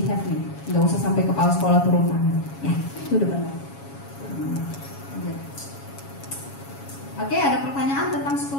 nih, nggak usah sampai kepala sekolah turun tangan. Ya, itu udah benar. Oke, ada pertanyaan tentang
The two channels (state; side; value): late; right; 7.2 ms